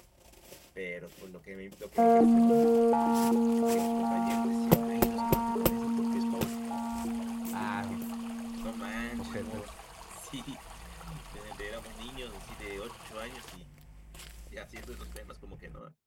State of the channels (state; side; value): identical; both; correlation 1.00